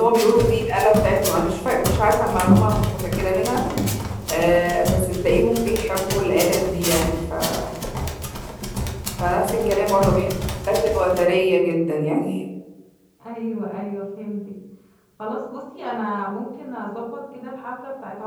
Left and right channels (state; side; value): identical; both; correlation 1.00